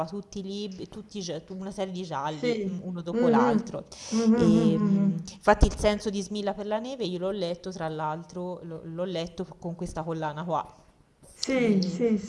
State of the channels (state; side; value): identical; both; correlation 1.00